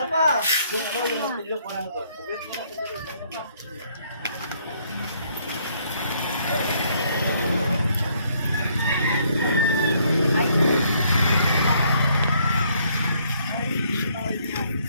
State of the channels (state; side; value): inverted; both; correlation -0.68